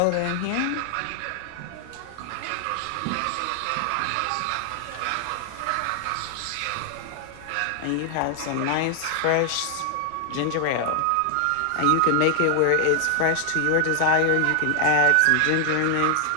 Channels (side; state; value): both; different; correlation 0.00